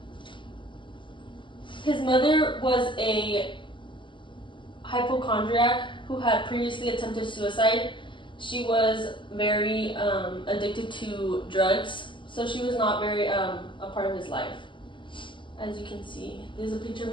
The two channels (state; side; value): late; right; 0.24 ms